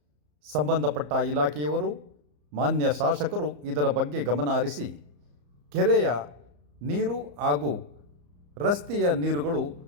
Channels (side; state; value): left; late; 34 ms